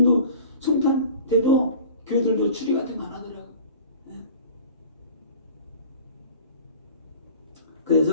성탄 때도 교회들도 추리 같은 거 안 하더라고.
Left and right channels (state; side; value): inverted; both; correlation -0.43